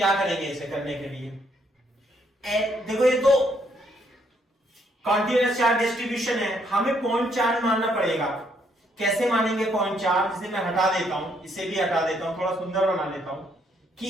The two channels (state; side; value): normal; both; correlation 0.71